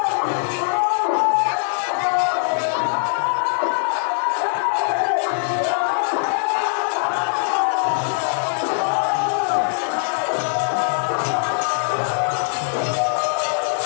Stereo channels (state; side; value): silent; right; 65 dB below the other